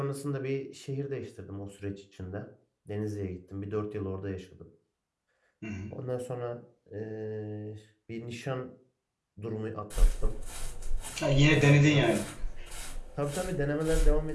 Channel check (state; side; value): identical; both; correlation 1.00